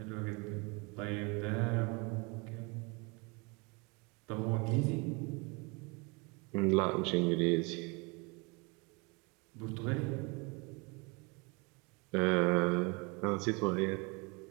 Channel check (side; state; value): left; quieter; 29.5 dB